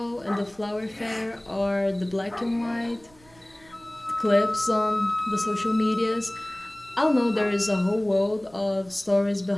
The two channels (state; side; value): noise; right; rumble, 28 dB below the sound